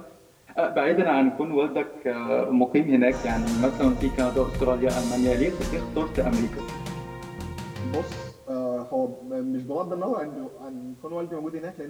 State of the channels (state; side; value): identical; both; correlation 1.00